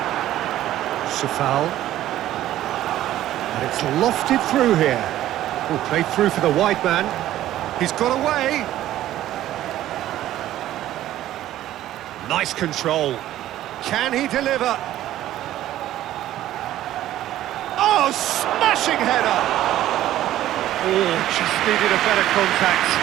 Safal. And it's lofted through here. Oh, played through for the wide man. He's got away. Nice control. Can he deliver? Oh, smashing header! Oh, just needed a better contact.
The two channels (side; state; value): left; quieter; 13.4 dB